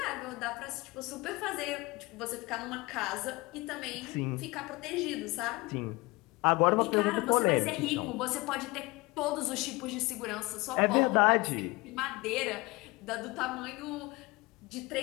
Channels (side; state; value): right; quieter; 23.3 dB